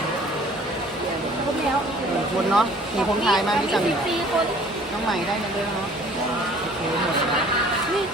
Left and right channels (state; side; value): normal; both; correlation 0.52